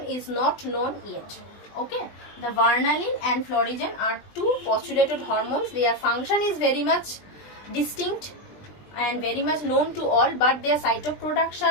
is not known yet. Okay, the varnalin and florigen are two postulated hormones. Their function is very much distinct and very much known to all, but their site of production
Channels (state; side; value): late; right; 20 ms